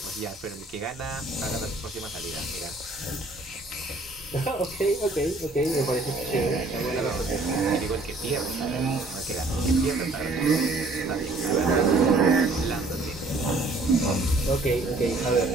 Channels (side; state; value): left; quieter; 3.1 dB